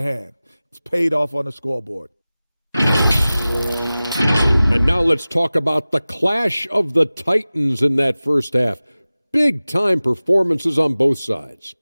It's paid off on the scoreboard. And now let's talk about the clash of the Titans in that first half. Big-time performances on both sides.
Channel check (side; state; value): both; inverted; correlation -0.97